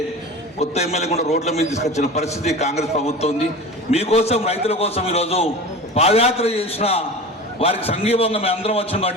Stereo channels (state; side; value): normal; both; correlation 0.33